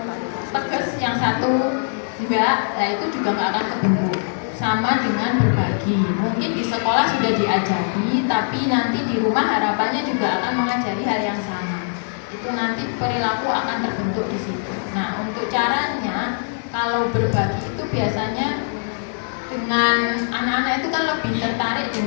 tegas, yang satu enggak, nah itu juga nggak akan terbentuk. Sama dengan berbagi, mungkin di sekolah sudah diajari, tapi nanti di rumah harapannya juga akan mengajari hal yang sama. Itu nanti perilaku akan terbentuk di situ. Nah, untuk caranya, kalau berbagi itu biasanya dengan anak-anak itu kan lebih tertarik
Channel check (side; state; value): right; silent; digital silence